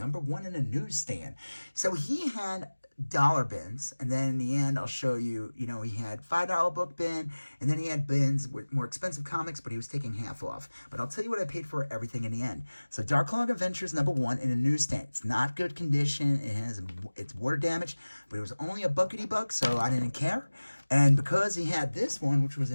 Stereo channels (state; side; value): inverted; both; correlation -1.00